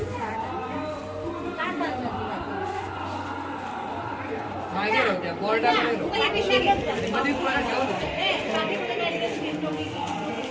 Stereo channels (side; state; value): both; identical; correlation 1.00